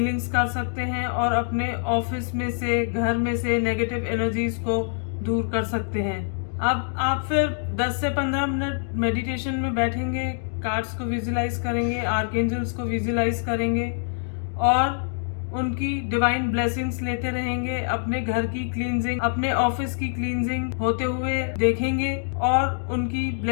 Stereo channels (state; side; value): silent; right; digital silence